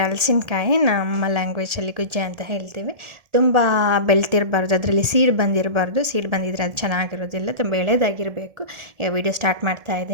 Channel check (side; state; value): left; late; 1.8 ms